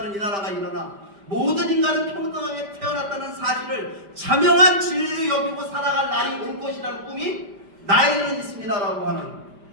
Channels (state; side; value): late; left; 5.1 ms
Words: 이 나라가 일어나 모든 인간은 평등하게 태어났다는 사실을 자명한 진리로 여기고 살아갈 날이 올 것이라는 꿈이 나이는 있습니다라고 하는